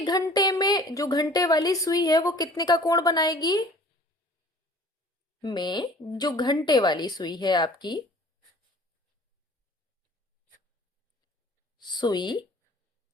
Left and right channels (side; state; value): both; normal; correlation 0.49